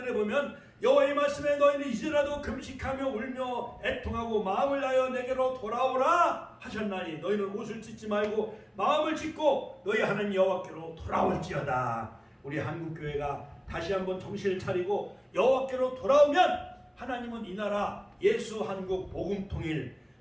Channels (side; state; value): both; identical; correlation 1.00